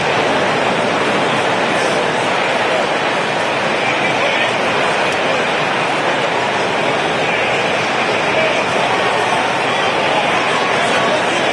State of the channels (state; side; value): identical; both; correlation 1.00